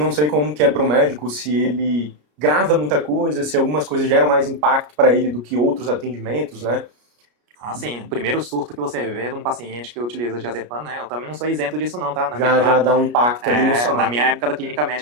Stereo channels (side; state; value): left; late; 33 ms